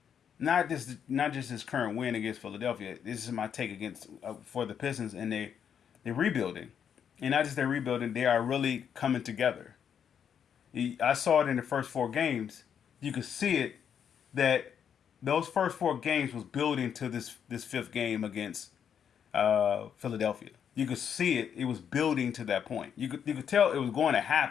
not just this current win against Philadelphia. This is my take against for the Pistons, and they're rebuilding, and not just they're rebuilding. They are really coming together. I saw it in the first four games. You could see it that those first four games was building to this fifth game against Philadelphia. You could see it; it was building to that point. You could tell it was going to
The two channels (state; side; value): quieter; right; 8.1 dB